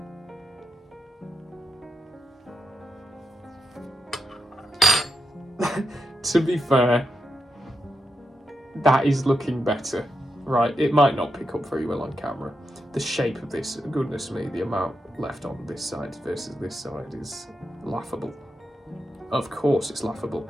To be fair, that is looking better, right? It might not pick up very well on camera. The shape of this, goodness me, the amount left on this side versus this side is laughable. Of course it's laughable.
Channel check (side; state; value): both; normal; correlation 0.86